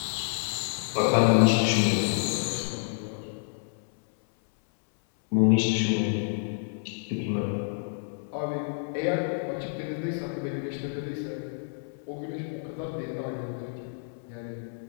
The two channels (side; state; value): right; silent; 59 dB below the other